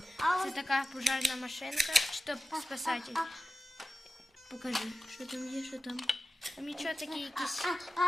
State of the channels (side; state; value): both; normal; correlation 0.93